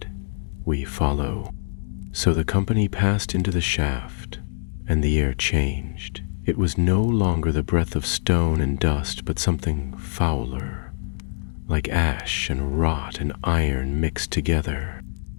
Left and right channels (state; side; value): silent; right; digital silence